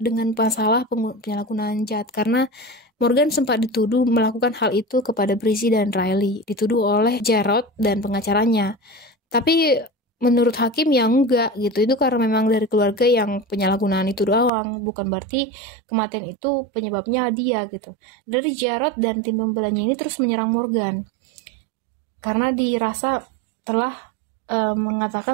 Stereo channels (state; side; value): drops out; left; at 14.5 s